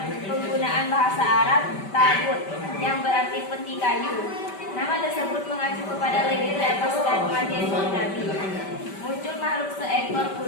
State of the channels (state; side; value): late; right; 5.1 ms